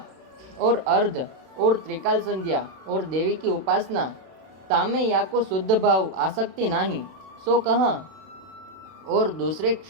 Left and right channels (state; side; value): late; left; 31 ms